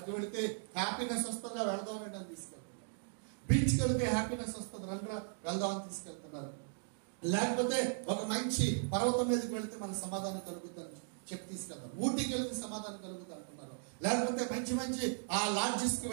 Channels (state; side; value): silent; left; digital silence